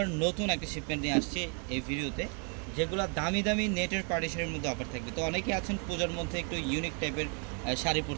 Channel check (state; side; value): quieter; left; 37.2 dB